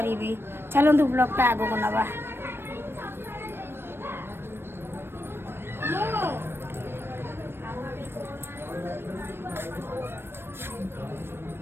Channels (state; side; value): late; left; 0.11 ms